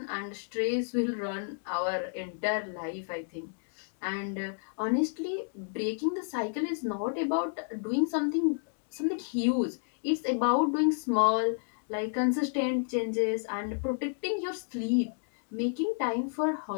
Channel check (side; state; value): right; silent; digital silence